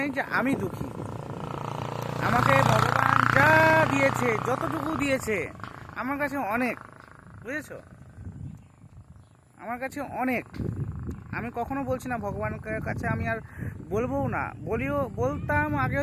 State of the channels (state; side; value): identical; both; correlation 1.00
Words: যে আমি দুঃখী। আমাকে ভগবান যা দিয়েছে, যতটুকু দিয়েছে আমার কাছে অনেক, বুঝেছো? আমার কাছে অনেক। আমি কখনো বলছি না ভগবানের কাছে আমি আর বলবোও না, বলতাম আগে